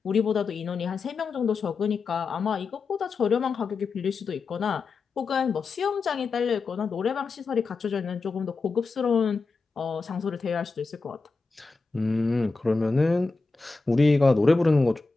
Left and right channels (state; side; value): quieter; right; 4.2 dB